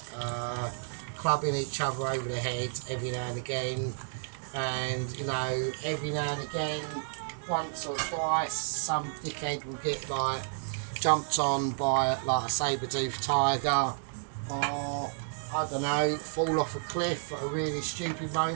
clubbing each other over the head every now and again, and you know, every now and again, once or twice, some dickhead will get like jumped on by like a saber-toothed tiger, or I don't know, fall off a cliff at a really stupid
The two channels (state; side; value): silent; left; digital silence